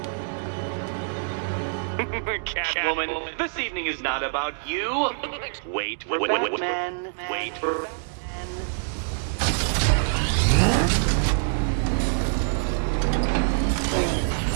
Catwoman, this evening is not about you. Wait for Batman. Wait for Batman.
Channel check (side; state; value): left; silent; 61 dB below the other